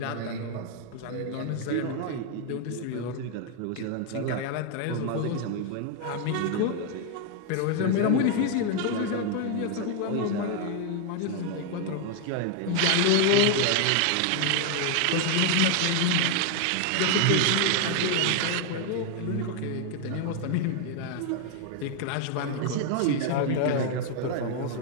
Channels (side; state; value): both; different; correlation 0.00